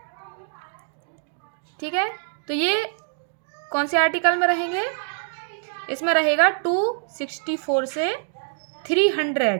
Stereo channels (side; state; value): left; silent; digital silence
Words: ठीक है, तो ये कौन से आर्टिकल में रहेंगे, इसमें रहेगा 264 से